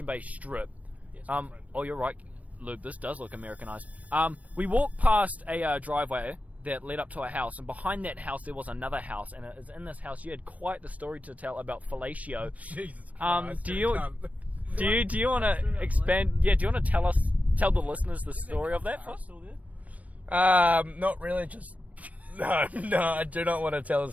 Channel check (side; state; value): left; late; 0.069 ms